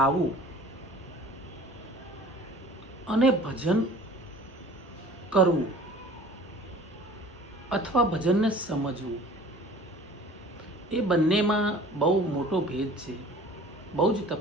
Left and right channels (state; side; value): normal; both; correlation 0.46